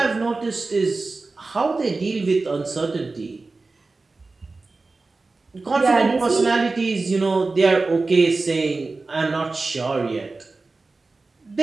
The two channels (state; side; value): quieter; left; 3.6 dB